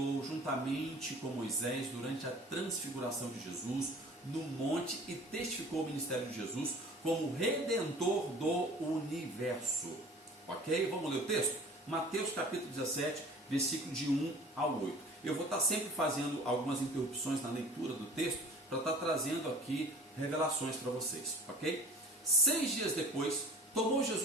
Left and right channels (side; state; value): both; normal; correlation 0.46